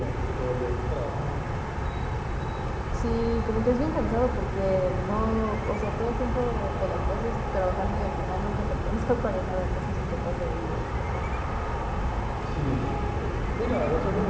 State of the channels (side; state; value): both; identical; correlation 1.00